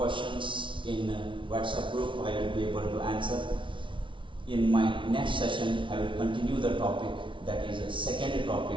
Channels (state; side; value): late; left; 0.24 ms